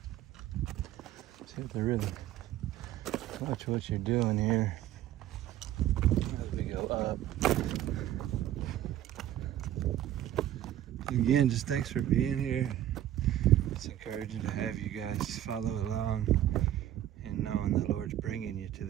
So you have to really watch what you're doing here as we go up. Again, just thanks for being here. It's encouraging to have you guys follow along and knowing the Lord's bringing you to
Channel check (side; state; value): left; quieter; 12.3 dB